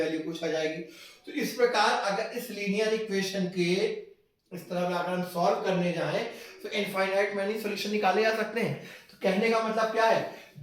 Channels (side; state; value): both; identical; correlation 1.00